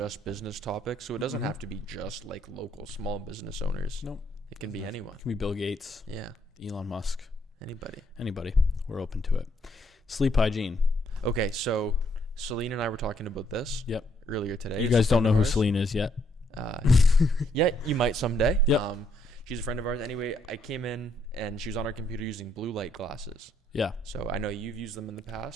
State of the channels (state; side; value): normal; both; correlation 0.72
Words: business topics, so it doesn't have to be just like local small business owners. Nope. It can be anyone. It can be Bill Gates. Yeah. Elon Musk. Anybody. We're open to it. Sleep hygiene. Okay, so Celine and I were talking about this earlier today. You guys don't know who Celine is yet? Yeah, you might someday. Yep. She's a friend of ours. Anyway, I came in and she was on her computer using blue light glasses. Yeah. So I know you've used them in the